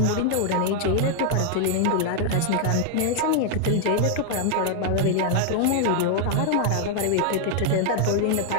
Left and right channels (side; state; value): both; different; correlation 0.00